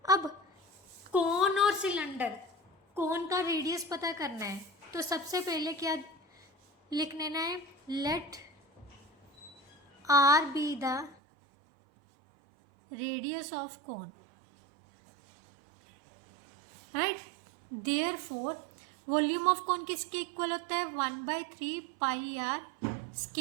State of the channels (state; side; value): drops out; left; at 11.2 s